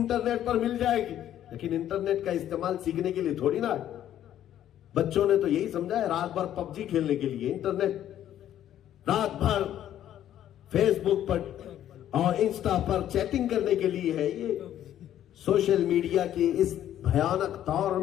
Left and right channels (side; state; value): right; quieter; 11.4 dB